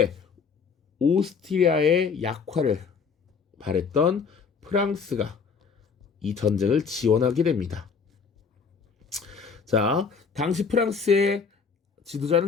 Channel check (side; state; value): right; quieter; 5.6 dB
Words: 오스트리아의 약화를 바랬던 프랑스가 이 전쟁을 지원하게 됩니다. 자, 당시 프랑스의